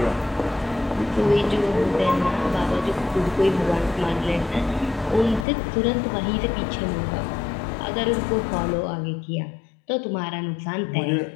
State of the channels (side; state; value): right; drops out; at 5.5 s